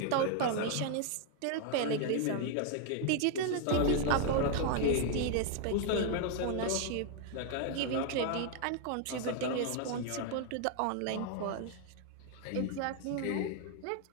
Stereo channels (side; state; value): both; different; correlation 0.00